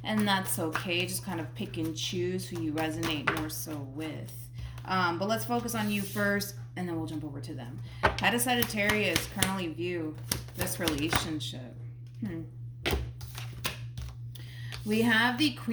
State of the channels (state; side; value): identical; both; correlation 1.00